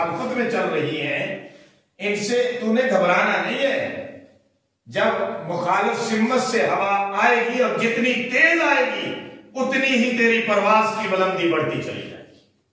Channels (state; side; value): identical; both; correlation 1.00